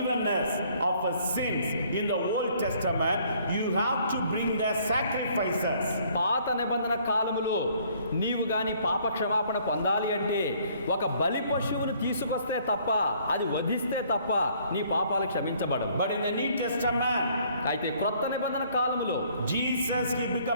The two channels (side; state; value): both; inverted; correlation -0.61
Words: of sins in the Old Testament, you have to bring the sacrifices. పాత నిబంధన కాలములో నీవు గాని పాప క్షమాపణ పొందాలి అంటే ఒక బలి పశువును తీసుకొస్తే తప్ప, అది వధిస్తే తప్ప నీ పాపాలు క్షమించబడవు. But in the New Testament, అయితే క్రొత్త నిబంధన కాలములో Jesus, he